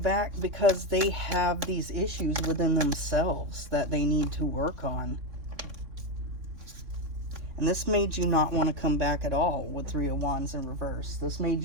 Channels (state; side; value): late; left; 3.5 ms